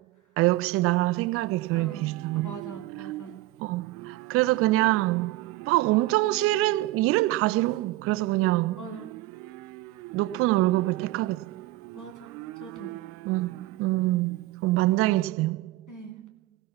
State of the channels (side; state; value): left; quieter; 17.5 dB